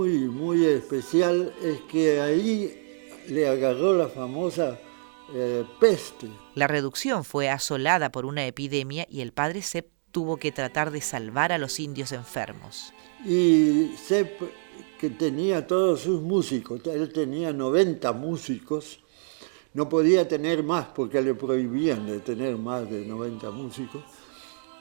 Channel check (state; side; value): silent; left; digital silence